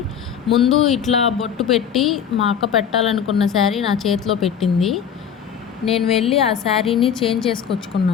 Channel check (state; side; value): quieter; right; 8.1 dB